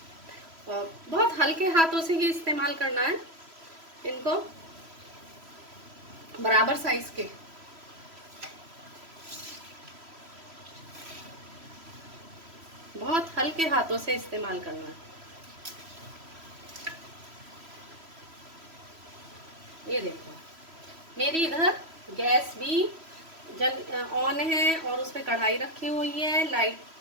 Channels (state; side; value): late; left; 3.0 ms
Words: और बहुत हल्के हाथों से ही इस्तेमाल करना है इनको, बराबर साइज के। बहुत हल्के हाथों से इस्तेमाल करना है। ये देखो, मेरी इधर गैस भी ऑन है और उसमें कढ़ाई रखी हुई है। लाइट